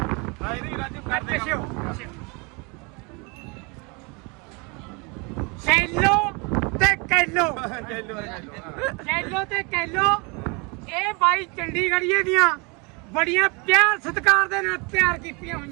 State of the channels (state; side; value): quieter; left; 29.9 dB